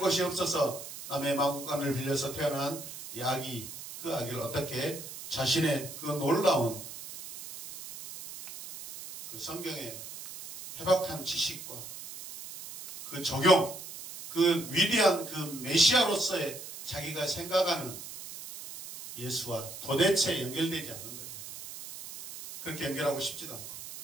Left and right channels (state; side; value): noise; right; hiss, 11 dB below the sound